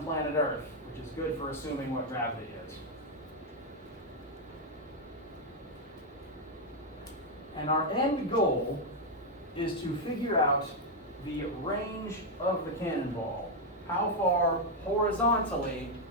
planet Earth, which is good for assuming what gravity is. And our end goal is to figure out the range of the cannonball. How far horizontally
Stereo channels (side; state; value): both; normal; correlation 0.01